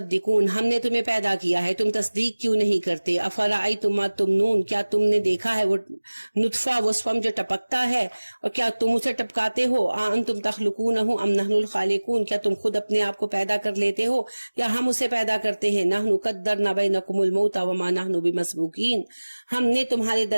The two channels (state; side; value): inverted; both; correlation -1.00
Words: ہم نے تمہیں پیدا کیا ہے تم تصدیق کیوں نہیں کرتے، افرأیتم ما تمنون کیا تم نے دیکھا ہے وہ نطفہ وہ سپم جو ٹپکتا ہے اور کیا تم اسے ٹپکاتے ہو، انتم تخلقونہ ام نحن الخالقون کیا تم خود اپنے آپ کو پیدا کر لیتے ہو یا ہم اسے پیدا کرتے ہیں، نحن قدرنا بینکم الموت وما نحن بمسبوقین ہم نے تمہارے